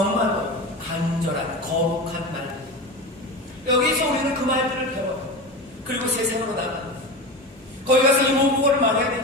간절한 거룩한 말들. 여기서 우리는 그 말들을 배워요. 그리고 세상으로 나갑니다. 거기 가서 이 모국어를 말해야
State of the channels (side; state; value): both; normal; correlation 0.26